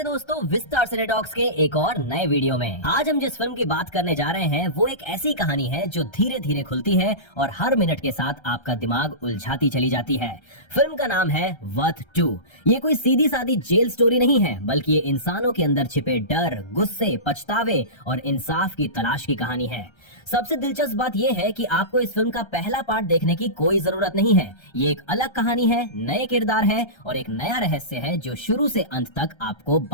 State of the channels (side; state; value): right; late; 1.3 ms